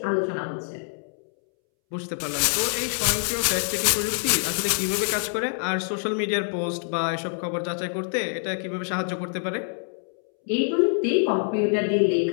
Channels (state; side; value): silent; right; 61 dB below the other